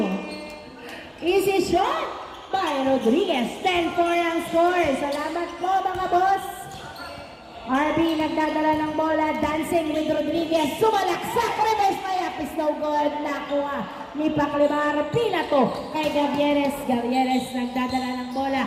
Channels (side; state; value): both; identical; correlation 1.00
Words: Easy shot by Rodriguez. 10-4 ang score. Salamat po mga boss. RB nagdadala ng bola, dancing with Rodriguez, sumalaksak, reverse layup is no good, nakuha ni Paclabar, pinato kay Gavieres nagdadala ng